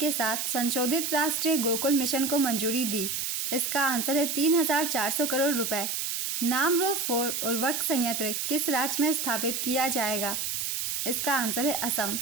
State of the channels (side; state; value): right; noise; hiss, 2 dB below the sound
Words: साथ संशोधित राष्ट्रीय गोकुल मिशन को मंजूरी दी? इसका आंसर है 3400 करोड़ रुपए। नामरो 4 उर्वरक संयंत्र किस राज्य में स्थापित किया जाएगा? इसका आंसर है असम।